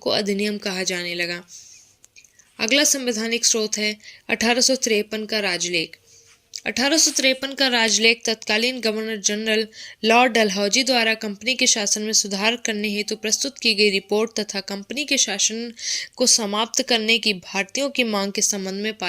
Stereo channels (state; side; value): identical; both; correlation 1.00